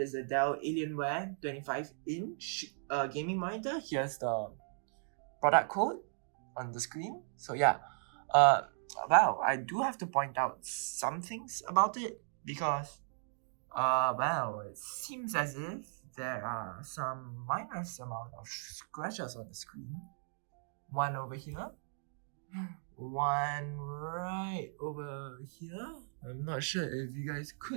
a Dell Alienware 25-inch gaming monitor. Here's the product code on the screen. So yeah, well, I do have to point out some things about it because well, it seems as if there are some minor amount of scratches on the screen. One over here, one right over here. I'm not sure if you guys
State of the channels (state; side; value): silent; left; digital silence